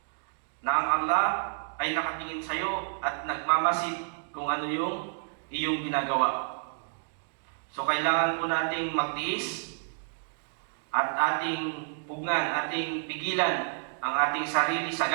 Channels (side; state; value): left; silent; digital silence